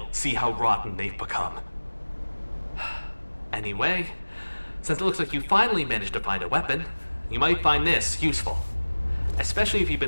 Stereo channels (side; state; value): both; inverted; correlation -1.00